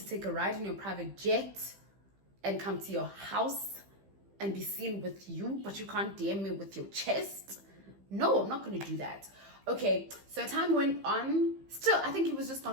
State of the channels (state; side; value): late; left; 15 ms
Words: take a ride in your private jet and come to your house and be seen with you, but you can't DM me with your chest? No, I'm not going to do that. Okay, so time went on. Still, I think he was just